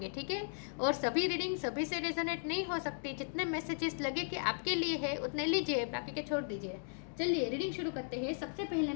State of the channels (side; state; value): right; silent; digital silence